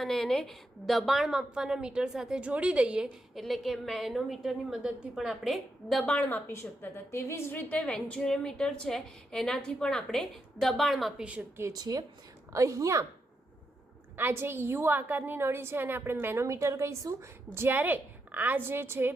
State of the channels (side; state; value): both; normal; correlation 0.83